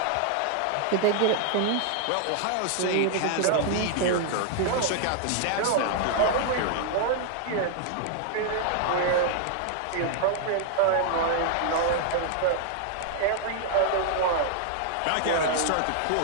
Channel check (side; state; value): both; different; correlation -0.01